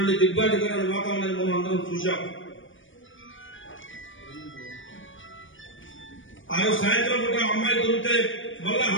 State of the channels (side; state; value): right; late; 0.57 ms